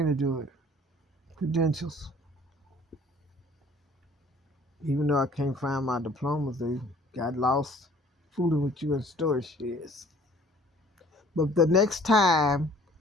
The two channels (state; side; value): normal; both; correlation 0.54